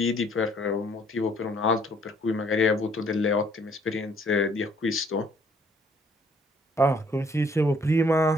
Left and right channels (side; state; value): both; normal; correlation 0.63